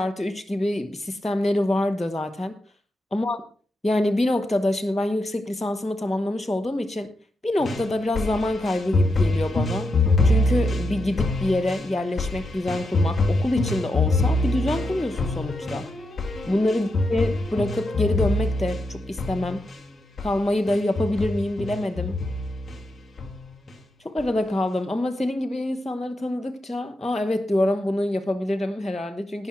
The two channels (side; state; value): both; normal; correlation 0.86